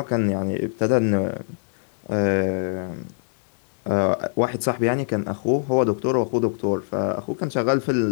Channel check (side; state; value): right; silent; digital silence